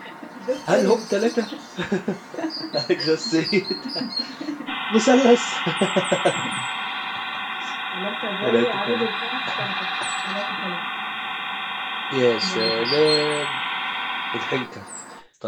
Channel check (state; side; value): identical; both; correlation 1.00